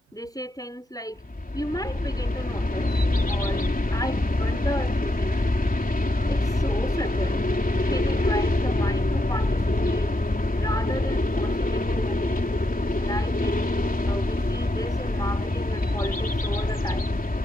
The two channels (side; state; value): both; normal; correlation 0.81